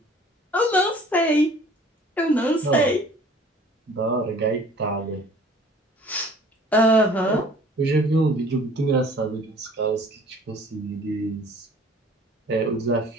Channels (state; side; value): normal; both; correlation 0.51